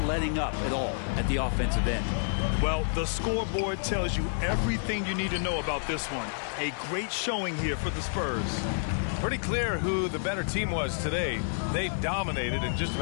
letting up at all at the offensive end. Well, the scoreboard tells you everything you need to know about this one. A great showing here for the Spurs. Pretty clear who the better team was today. They dominated in just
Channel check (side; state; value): right; silent; digital silence